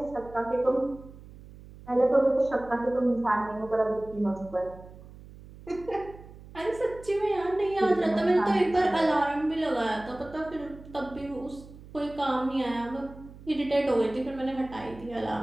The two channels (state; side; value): noise; right; hum, 18 dB below the sound